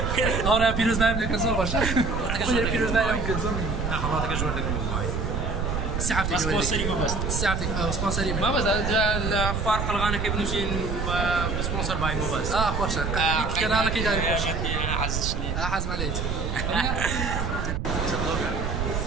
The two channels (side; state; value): right; noise; rumble, 1 dB below the sound